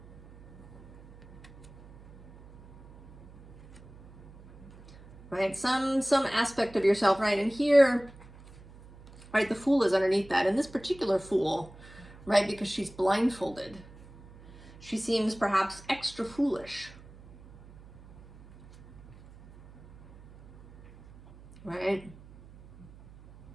Right, some aspect of yourself, right? And here, right, the Fool is underneath that. And this particular Fool, right, because she's blindfolded, she seems perhaps extra foolish. Right?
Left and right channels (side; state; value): right; noise; hum, 21 dB below the sound